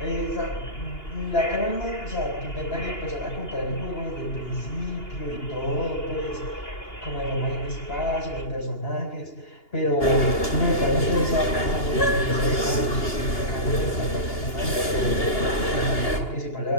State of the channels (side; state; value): right; late; 2.8 ms